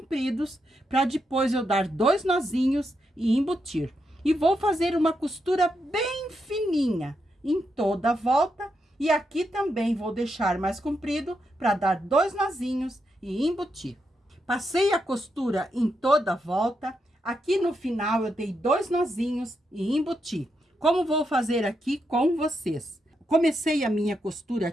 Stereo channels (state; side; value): normal; both; correlation 0.83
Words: para depois eu dar 2 nozinhos e embutir. E vou fazer uma costura bem fininha em toda a volta, e aqui também vou deixar mais comprido, para dar 2 nozinhos e embutir. Passei a costura em toda a volta, aqui no final eu dei 2 nozinhos e embuti. Como vou fazer aqui com vocês? Comecei a minha costura